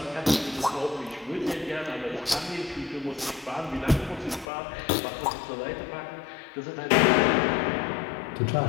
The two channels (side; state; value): right; drops out; at 4.5 s